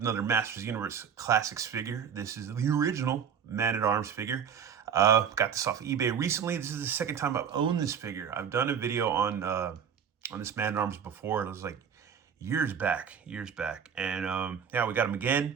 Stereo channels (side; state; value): left; quieter; 7.6 dB